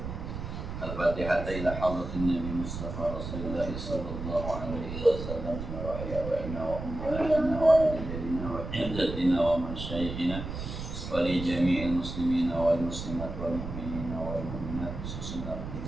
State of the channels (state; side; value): noise; right; rumble, 7 dB below the sound